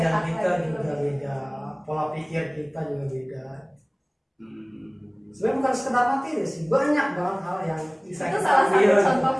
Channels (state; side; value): identical; both; correlation 1.00